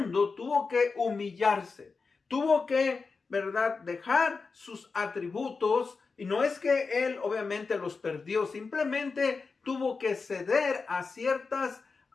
tuvo que humillarse, tuvo que ¿verdad?, dejar sus atributos. Y no es que él obviamente los perdió, simplemente tuvo que ceder a ciertas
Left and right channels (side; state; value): right; quieter; 4.6 dB